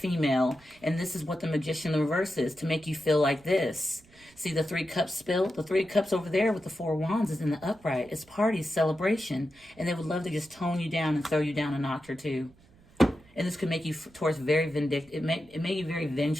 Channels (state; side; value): noise; right; rumble, 28 dB below the sound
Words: and this is what the Magician in reverse is, to make you feel like this. See the Three Cups spilled? The Three Cups over there with the Four of Wands is in the upright. It's party, celebration, and they would love to just tone you down and throw you down a notch or two. And this could make you, towards, very vindictive. It made you very